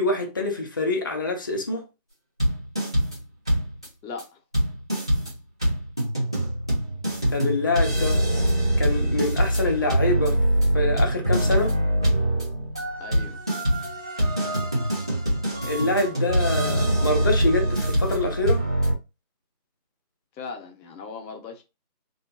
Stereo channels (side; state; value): both; inverted; correlation -0.74